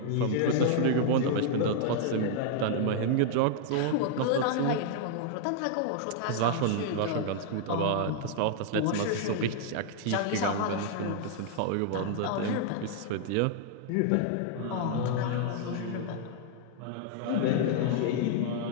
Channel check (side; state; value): both; different; correlation -0.01